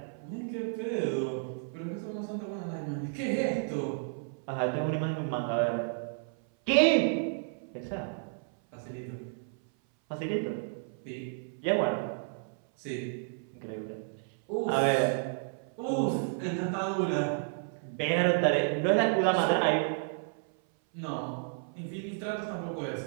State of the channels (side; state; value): left; silent; 57 dB below the other